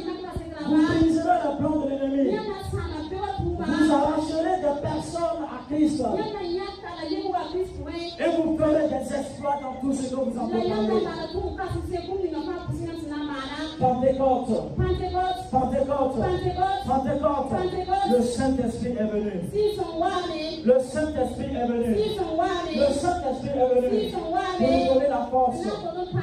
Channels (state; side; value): identical; both; correlation 1.00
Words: Vous briserez le plan de l'ennemi. Vous arracherez des personnes à Christ. Et vous ferez des exploits dans tout ce que vous entreprendrez. Pentecôte. Pentecôte. Pentecôte. Le Saint-Esprit est venu. Le Saint-Esprit est venu. Le Saint-Esprit est venu pour nous donner la force